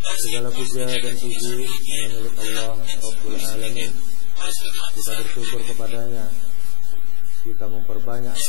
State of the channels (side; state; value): both; different; correlation 0.00